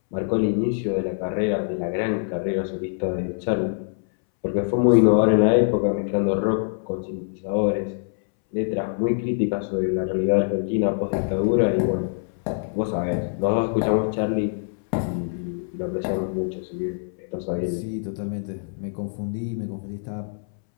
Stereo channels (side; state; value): right; silent; 62 dB below the other